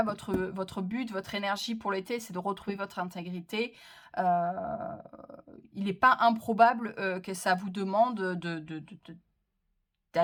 votre but, votre énergie pour l'été, c'est de retrouver votre intégrité, euh, il n'est pas improbable que ça vous demande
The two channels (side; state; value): both; identical; correlation 1.00